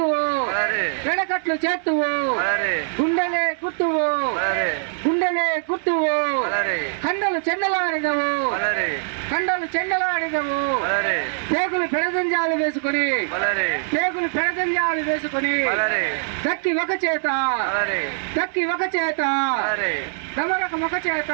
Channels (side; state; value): left; silent; digital silence